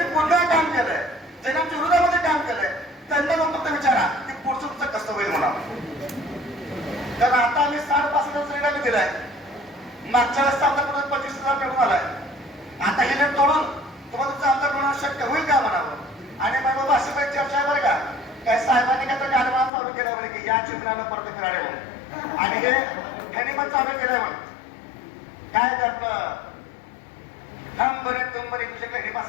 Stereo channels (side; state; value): right; drops out; at 19.7 s